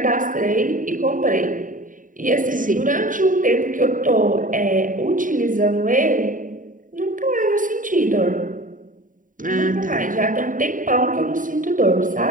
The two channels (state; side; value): late; left; 0.39 ms